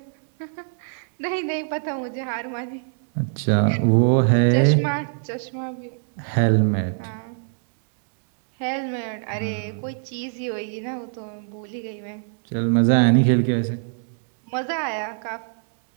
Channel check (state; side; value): silent; left; digital silence